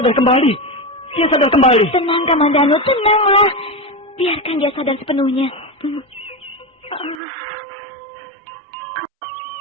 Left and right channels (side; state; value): left; drops out; at 7.2 s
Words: kembali. Dia sadar kembali. Tenang, Kamandanu. Tenanglah. Biarkan dia sadar sepenuhnya.